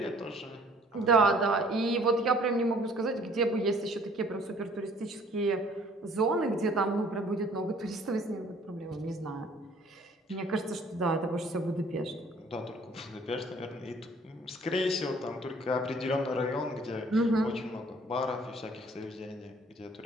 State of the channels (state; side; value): normal; both; correlation 0.56